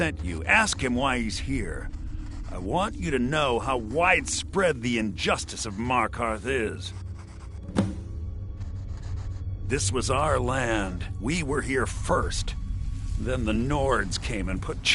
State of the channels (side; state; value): both; identical; correlation 1.00